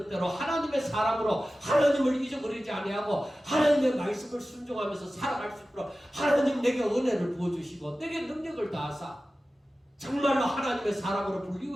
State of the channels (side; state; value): both; normal; correlation 0.95